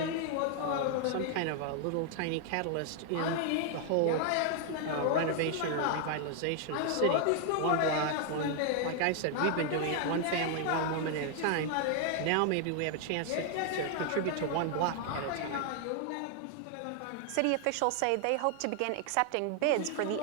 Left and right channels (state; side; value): different; both; correlation 0.00